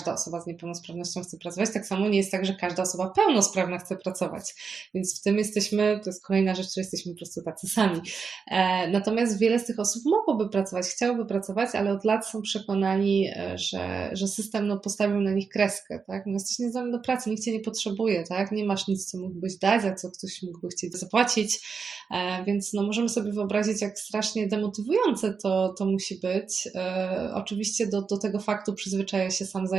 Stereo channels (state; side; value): quieter; left; 5.5 dB